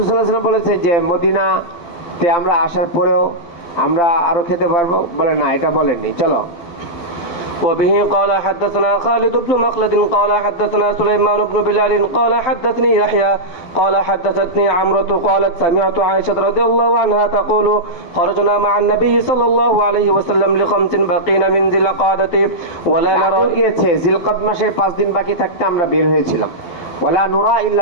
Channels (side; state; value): right; late; 12 ms